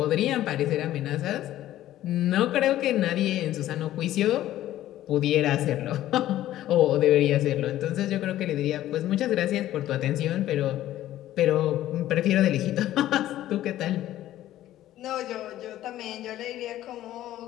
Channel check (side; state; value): right; quieter; 13.6 dB